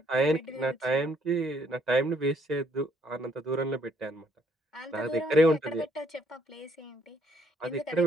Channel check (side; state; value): both; normal; correlation 0.67